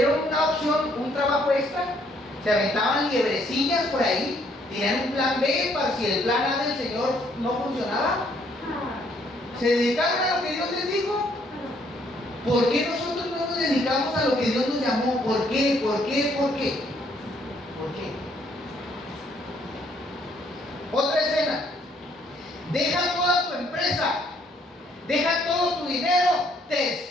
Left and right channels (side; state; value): both; normal; correlation 0.67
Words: una opción, un trabajo extra. Se aventaban liebrecillas por ahí. Tenían un plan B para si el plan A del Señor no funcionaba. Se dedicaron a lo que Dios les dijo. ¿Por qué nosotros no nos dedicamos a lo que Dios nos llamó? ¿Por qué? ¿Por qué? ¿Por qué? ¿Por qué? Otra escena: deja toda tu empresa, deja todo tu dinero, te